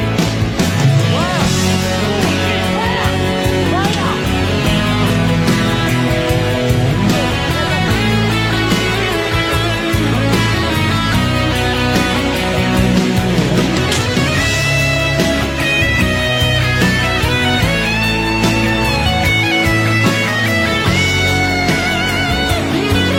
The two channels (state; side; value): identical; both; correlation 1.00